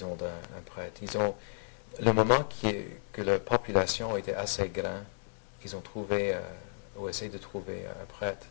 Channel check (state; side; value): silent; right; digital silence